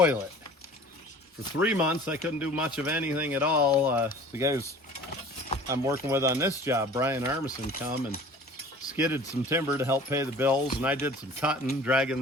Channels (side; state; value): both; normal; correlation 0.45